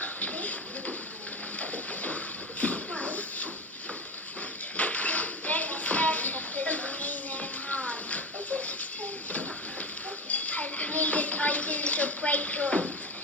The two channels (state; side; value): normal; both; correlation 0.24